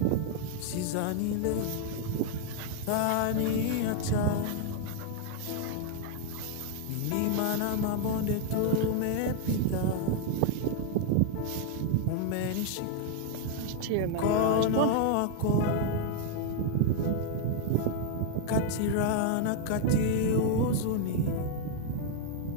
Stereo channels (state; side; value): different; both; correlation 0.00